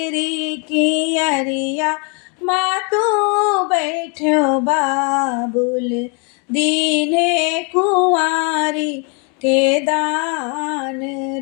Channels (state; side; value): quieter; right; 35.6 dB